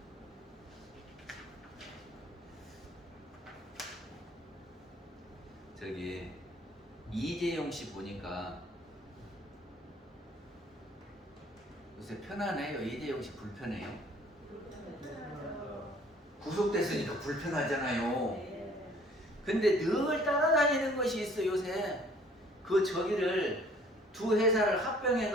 저기 이재용 씨 보니까 요새 편하네요. 이재용 씨 불편해요. 구속됐으니까 불편하잖아요. 근데 늘 따라다니는 것이 있어 요새. 그 저기를 두 회사를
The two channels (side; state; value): both; normal; correlation 0.56